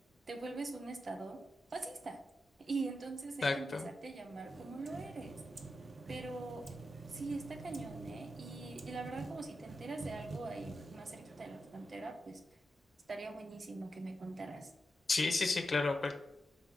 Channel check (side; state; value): both; normal; correlation 0.88